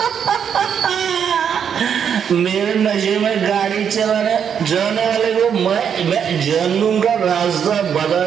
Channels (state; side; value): quieter; left; 7.8 dB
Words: मेरे नशे में गाड़ी चलाने वाले को मैं जहन्नुम का रास्ता बता